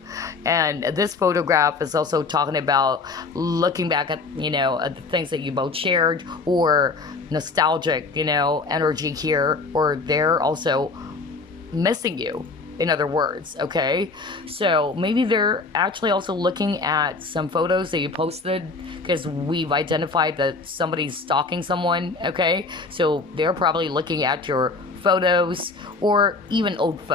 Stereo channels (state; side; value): quieter; right; 4.0 dB